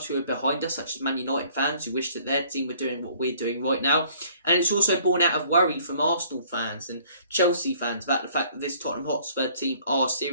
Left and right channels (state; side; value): inverted; both; correlation -0.57